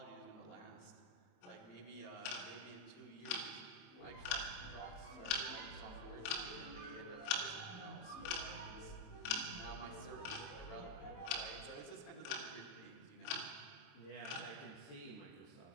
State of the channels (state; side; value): late; right; 28 ms